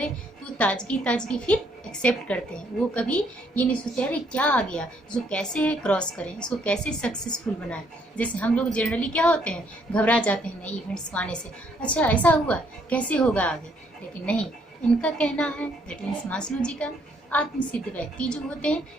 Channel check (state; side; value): normal; both; correlation 0.69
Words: तो ताजगी फिर एक्सेप्ट करते हैं। वो कभी ये नहीं सोचते अरे क्या आ गया, इसको कैसे क्रॉस करें, इसको कैसे सक्सेसफुल बनाएं। जैसे हम लोग जनरली क्या होते हैं, घबरा जाते हैं नई इवेंट्स को आने से, अच्छा ऐसा हुआ कैसे होगा आगे। लेकिन नहीं, इनका कहना है, दैट मीन्स मास्लो जी का, आत्मसिद्ध व्यक्ति जो होते हैं